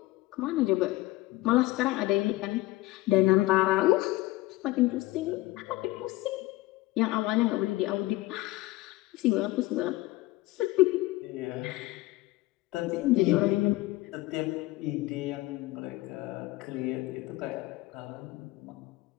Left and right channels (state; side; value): quieter; right; 18.7 dB